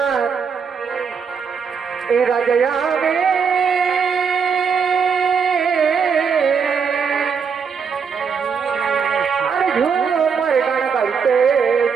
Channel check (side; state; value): left; quieter; 6.2 dB